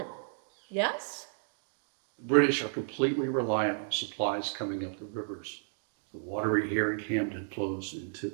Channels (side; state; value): left; silent; digital silence